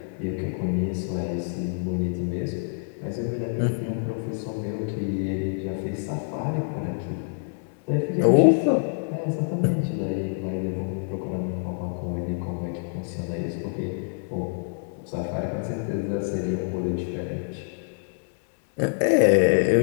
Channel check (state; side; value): silent; right; digital silence